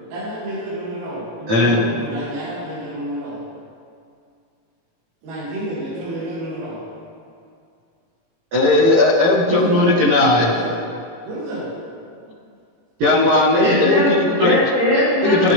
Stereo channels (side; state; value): left; late; 18 ms